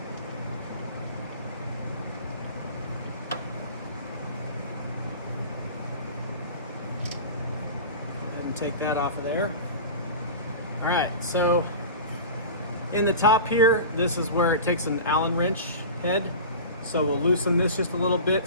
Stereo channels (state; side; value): inverted; both; correlation -0.34